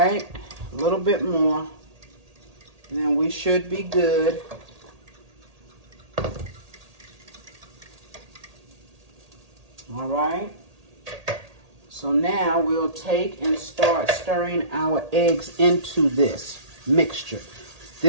a little bit more, and then we should be good. All right. So now we'll take and start stirring our eggs into this mixture.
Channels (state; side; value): late; left; 1.8 ms